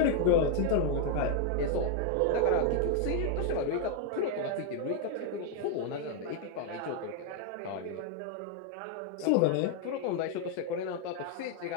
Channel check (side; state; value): both; different; correlation 0.00